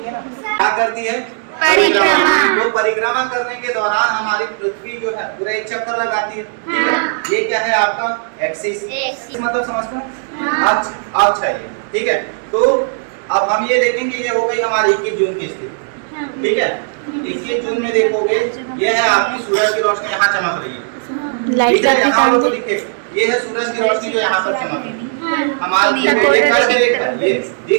है ना क्या करती है, परिक्रमा। तो परिक्रमा करने के दौरान हमारी पृथ्वी जो है पूरा एक चक्कर लगाती है, ठीक है। ये क्या है आपका एक्सिस, मतलब समझते हैं अक्ष है ये, ठीक है। तो अब हम ये देखेंगे, ये हो गई हमारी 21 जून की स्थिति, ठीक है। 21 जून में देखोगे ये है आपकी सूरज की रोशनी यहाँ चमक रही है, ठीक है। यहाँ लोगों को दिखे ये है सूरज की रोशनी जो यहाँ पर चमक रही है, हमारे ये कर्क रेखा, ये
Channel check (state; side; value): silent; left; digital silence